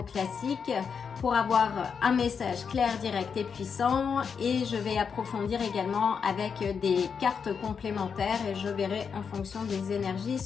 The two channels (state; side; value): quieter; right; 6.3 dB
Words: classique pour avoir un message clair, direct et puissant, et je vais approfondir également avec des cartes complémentaires et je verrai en fonction des énergies